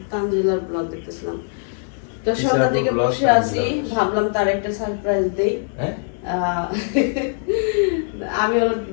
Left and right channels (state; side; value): silent; right; digital silence